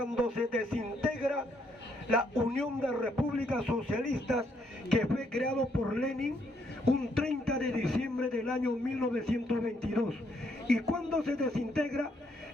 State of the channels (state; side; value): normal; both; correlation 0.73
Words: se desintegra la Unión de Repúblicas Socialistas, que fue creado por Lenin un 30 de diciembre del año 1922. ¿Y cuando se desintegra?